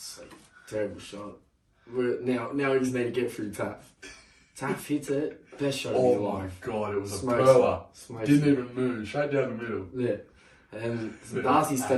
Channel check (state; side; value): identical; both; correlation 1.00